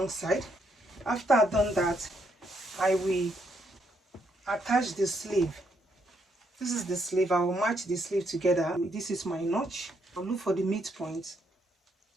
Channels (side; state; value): both; normal; correlation 0.75